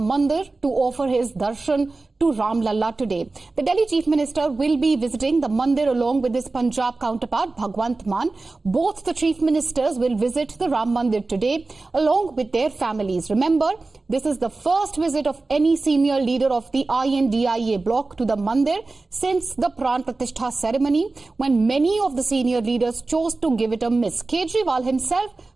to offer his darshan to Ram Lalla today. The Delhi Chief Minister will be visiting the Mandir along with his Punjab counterpart Bhagwant Mann. Both the Chief Ministers will visit the Ram Mandir today along with their families. Remember, this is the first visit of any senior leader of the INDIA bloc to the Mandir since the Pran Pratishtha ceremony, when many of the senior leaders chose to give it a miss. Kejriwal himself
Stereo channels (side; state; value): left; quieter; 3.5 dB